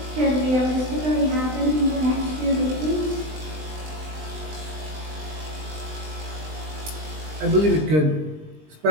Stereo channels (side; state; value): left; late; 20 ms